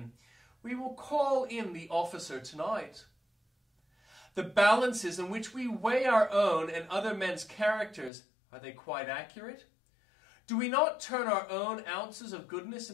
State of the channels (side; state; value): right; drops out; at 8.1 s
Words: We will call in the officer tonight. The balances in which we weigh our own and other men's characters, are they quite accurate? Do we not turn our own ounces of goodness